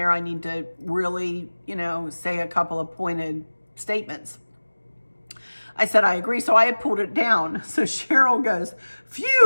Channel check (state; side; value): inverted; both; correlation -1.00